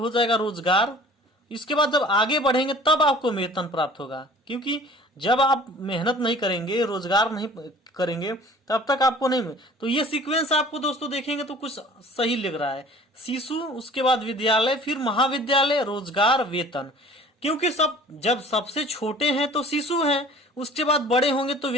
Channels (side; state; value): both; normal; correlation 0.47